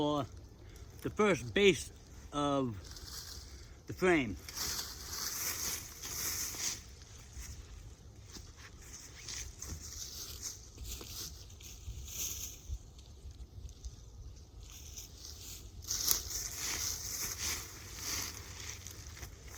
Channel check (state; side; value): identical; both; correlation 1.00